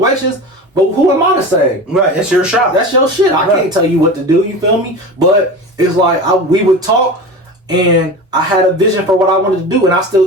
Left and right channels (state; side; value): normal; both; correlation 0.30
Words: but who am I to say? Right, it's your shop. That's your shit. I can't tell you what to do, you feel me? But it's like we would talk and I had a vision for what I wanted to do and I